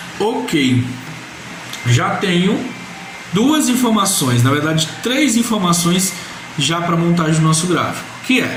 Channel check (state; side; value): identical; both; correlation 1.00